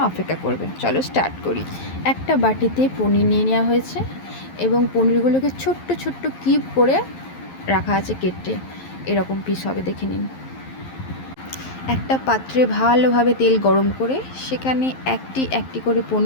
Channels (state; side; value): late; right; 11 ms